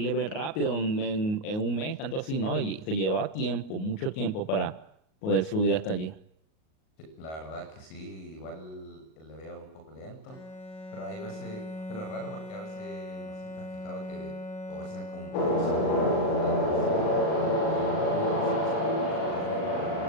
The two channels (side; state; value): right; late; 38 ms